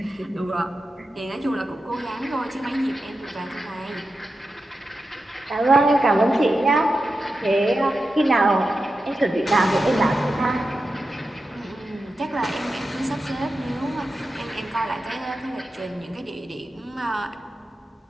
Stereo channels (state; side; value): normal; both; correlation 0.91